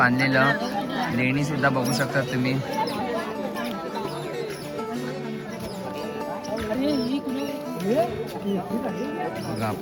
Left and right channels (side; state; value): both; identical; correlation 1.00